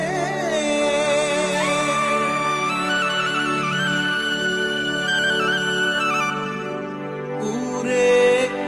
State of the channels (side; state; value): both; identical; correlation 1.00